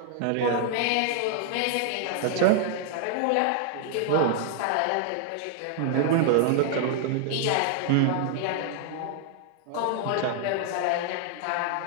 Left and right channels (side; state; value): both; different; correlation -0.01